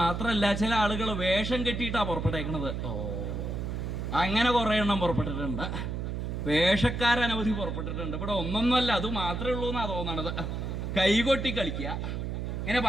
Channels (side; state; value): right; noise; hum, 3 dB below the sound